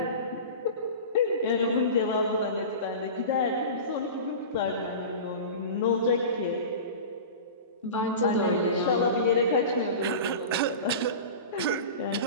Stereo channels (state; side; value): inverted; both; correlation -0.32